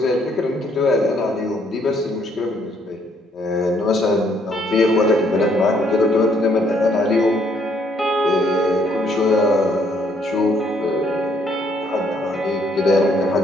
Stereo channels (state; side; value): normal; both; correlation 0.68